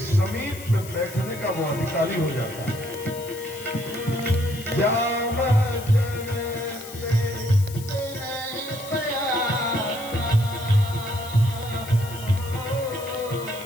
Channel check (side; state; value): left; noise; hiss, 15 dB below the sound